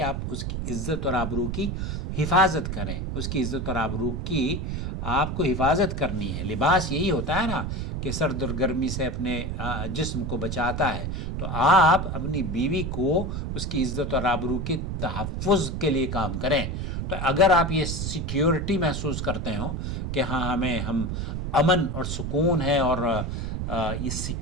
آپ اس کی عزت اور آبرو کی حفاظت کریں. اس کی عزت اور آبرو کی آپ کو حفاظت کرنی ہے. لباس یہی ہوتا ہے نا کہ سرد اور گرمی سے اپنے جسم کو بچاتا ہے. تو آپ اپنی بیوی کو اس کی عزت اور آبرو کے تحفظ کے لیے کام کریں. تو اگر آپ یہ سیکیورٹی محسوس کرتے ہوں کہ ہاں ہم امن اور سکون ہے اور یہ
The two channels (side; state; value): right; noise; rumble, 3 dB below the sound